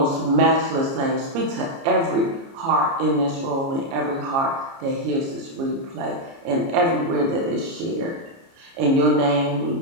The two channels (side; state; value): left; late; 30 ms